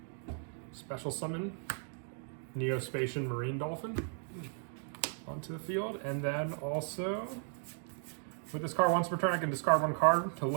special summon Neospatian Marine Dolphin onto the field, and then also with this card, once per turn, I can discard one card to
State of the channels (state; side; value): silent; left; 54 dB below the other